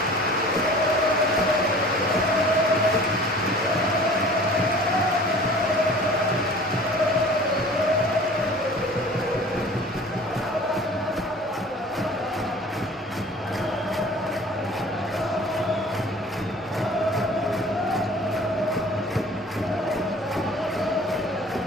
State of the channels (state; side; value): normal; both; correlation 0.45